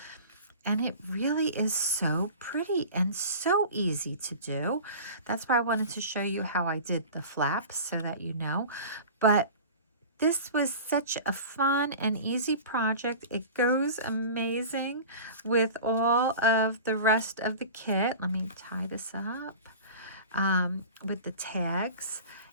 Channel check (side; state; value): both; inverted; correlation -0.37